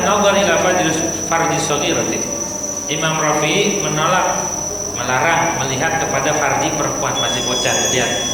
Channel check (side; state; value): both; identical; correlation 1.00